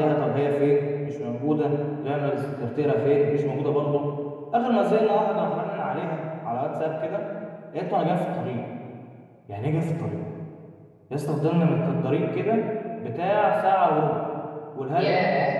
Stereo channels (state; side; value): identical; both; correlation 1.00